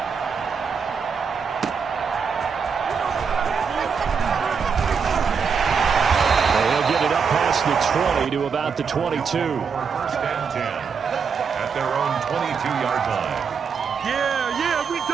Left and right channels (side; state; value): left; quieter; 6.0 dB